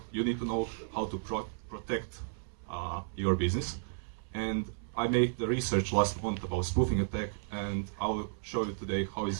know how to protect your business. And I made the research last month about spoofing attack, and I'll show you today how it's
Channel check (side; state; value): left; silent; 55 dB below the other